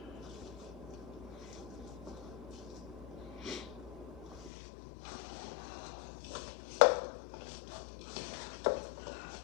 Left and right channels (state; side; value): drops out; right; at 4.5 s